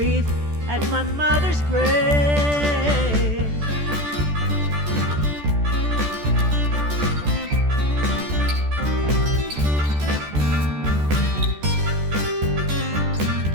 at my mother's grave.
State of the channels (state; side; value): late; left; 14 ms